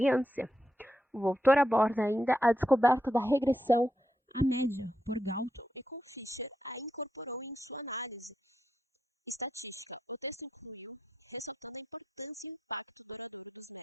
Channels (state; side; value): normal; both; correlation 0.85